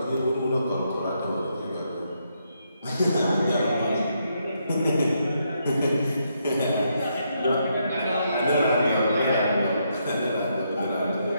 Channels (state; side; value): inverted; both; correlation -0.78